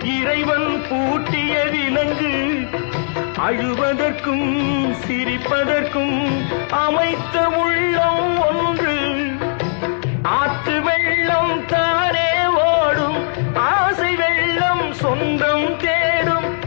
இறைவன் பூட்டிய விலங்கு. அழுவதற்கும் சிரிப்பதற்கும் அமைத்த உள்ளம் ஒன்று. ஆற்று வெள்ளம் தானே ஓடும், ஆசை வெள்ளம் சொந்தம் தேடும்.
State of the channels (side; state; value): right; silent; digital silence